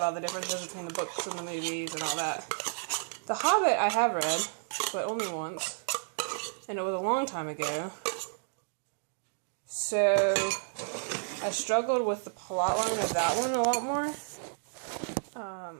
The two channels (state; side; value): silent; left; digital silence